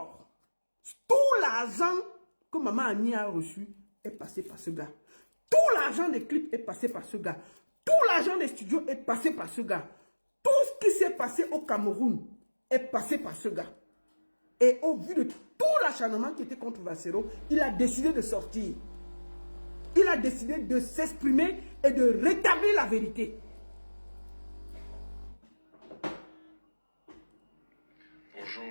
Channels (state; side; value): inverted; both; correlation -1.00